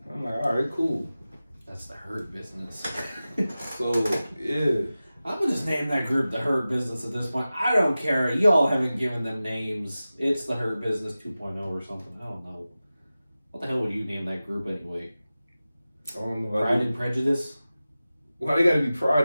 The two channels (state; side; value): inverted; both; correlation -0.96